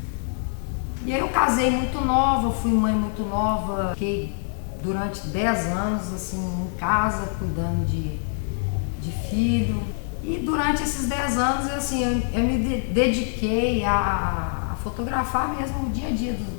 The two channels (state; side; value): silent; right; digital silence